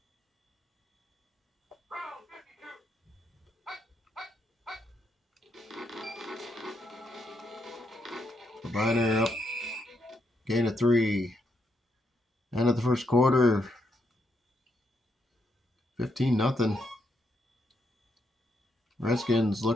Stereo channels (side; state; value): both; normal; correlation 0.78